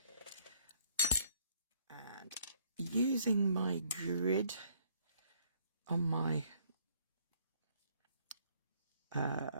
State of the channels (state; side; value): inverted; both; correlation -0.64